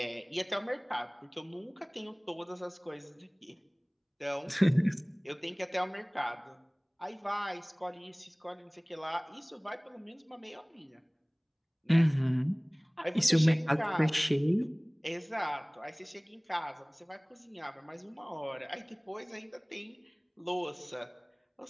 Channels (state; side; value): identical; both; correlation 1.00